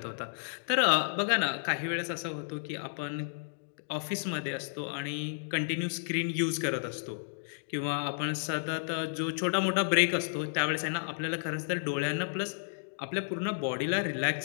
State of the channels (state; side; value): silent; right; digital silence